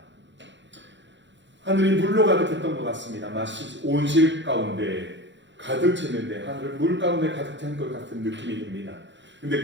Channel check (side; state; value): left; late; 0.53 ms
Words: 하늘이 물로 가득했던 것 같습니다. 마치 온실 가운데 가득 찼는데 하늘을 물 가운데 가득 찬 것 같은 느낌이 듭니다. 근데